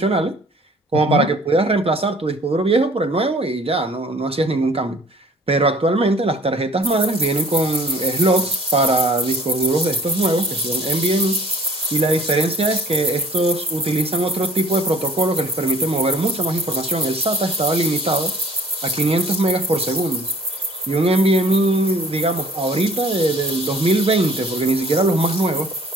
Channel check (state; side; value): normal; both; correlation 0.51